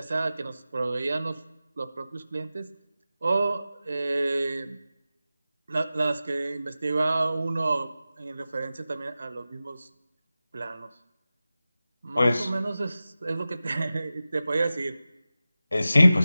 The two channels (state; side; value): inverted; both; correlation -0.94